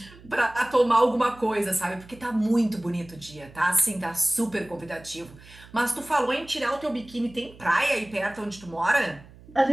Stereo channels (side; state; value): right; noise; hum, 22 dB below the sound